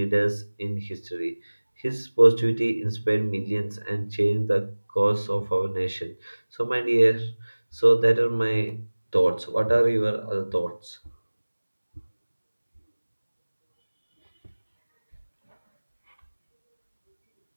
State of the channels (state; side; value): inverted; both; correlation -1.00